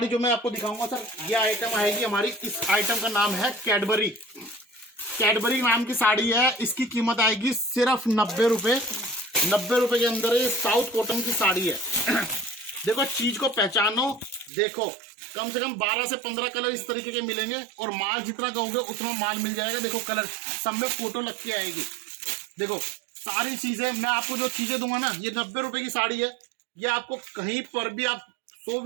जो मैं आपको दिखाऊंगा सर, ये आइटम आएगी हमारी, इस आइटम का नाम है कैडबरी। कैडबरी नाम की साड़ी है, इसकी कीमत आएगी सिर्फ 90 रुपए। 90 रुपए के अंदर ये साउथ कॉटन की साड़ी है। देखो चीज को पहचानो, देखो कम से कम 12 से 15 कलर इस तरीके के मिलेंगे और माल जितना कहोगे उतना माल मिल जाएगा। देखो कलर सब में फोटो लग के आएगी। देखो सारी चीजें मैं आपको जो चीजें दूंगा ना, ये 90 रुपए की साड़ी है। ये आपको कहीं पर भी आप 100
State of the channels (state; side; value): drops out; left; at 14.5 s